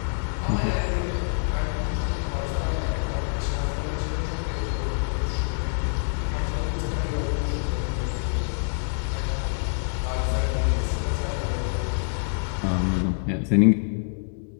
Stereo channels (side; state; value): right; silent; 61 dB below the other